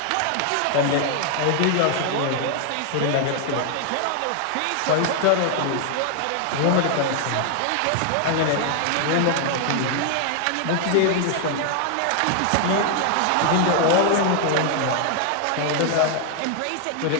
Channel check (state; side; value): different; both; correlation 0.00